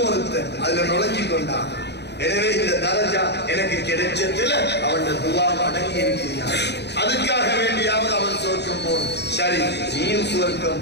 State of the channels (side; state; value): right; late; 0.49 ms